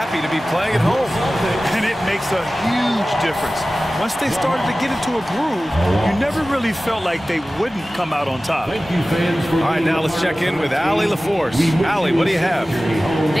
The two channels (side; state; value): both; normal; correlation 0.96